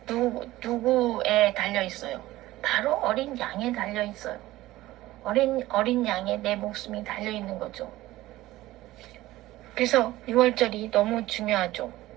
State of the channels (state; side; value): quieter; left; 16.8 dB